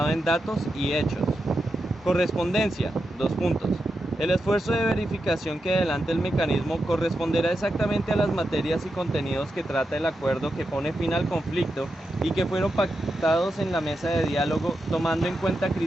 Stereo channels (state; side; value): normal; both; correlation 0.87